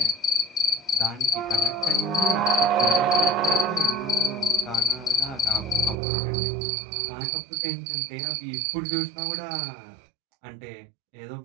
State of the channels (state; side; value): drops out; left; at 6.0 s